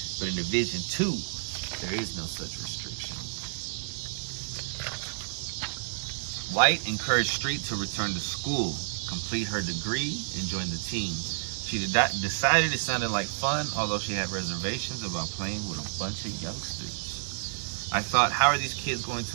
but in Division II, there is no such restriction. White encouraged Street to return to school, complete her degree, and join the team. She decided it sounded like fun, although she had reservations about playing with a bunch of youngsters. I thought, how are these kids going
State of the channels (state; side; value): silent; left; digital silence